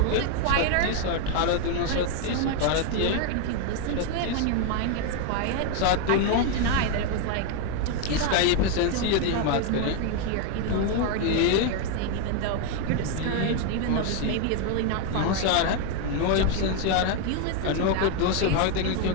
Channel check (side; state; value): both; different; correlation 0.01